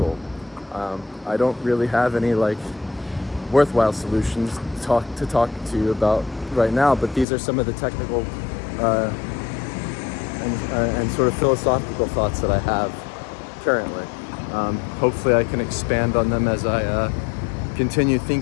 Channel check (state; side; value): drops out; right; at 7.2 s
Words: I don't really have any worthwhile solutions to talk to you about right now, but these are some of the technical and sort of philosophical thoughts that I have currently. Hopefully I can expand on them as I continue